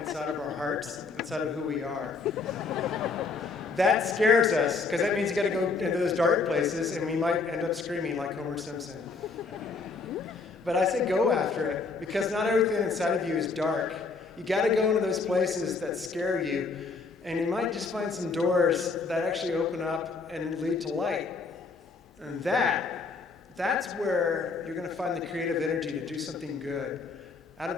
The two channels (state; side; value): quieter; right; 4.4 dB